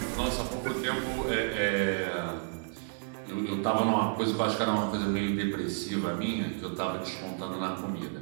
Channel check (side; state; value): left; silent; digital silence